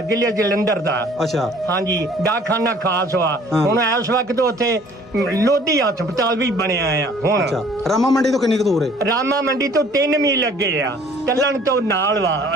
ਜ਼ਿਲ੍ਹੇ ਜਲੰਧਰ ਦਾ। ਅੱਛਾ ਹਾਂਜੀ, ਡਾਕਖਾਨਾ ਖਾਸ ਵਾ। ਹੁਣ ਇਸ ਵਕਤ ਉੱਥੇ ਲੋਧੀ ਹਸਪਤਾਲ ਵੀ ਬਣਿਆ ਆ ਹੁਣ। ਅੱਛਾ, ਰਾਮਾ ਮੰਡੀ ਤੋਂ ਕਿੰਨੀ ਕੁ ਦੂਰ ਹੈ? ਰਾਮਾ ਮੰਡੀ ਤੋਂ 3 ਮੀਲ ਲੱਗੇ ਆ, ਤੱਲਣ ਤੋਂ ਨਾਲ ਵਾ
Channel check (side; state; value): both; normal; correlation 0.55